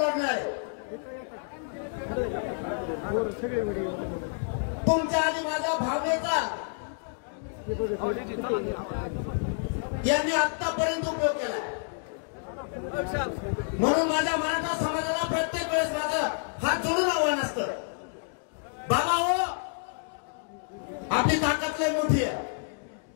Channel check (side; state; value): right; silent; digital silence